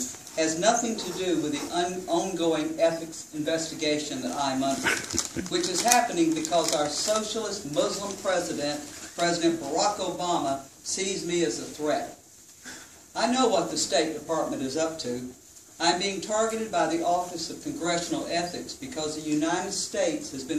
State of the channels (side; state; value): both; identical; correlation 1.00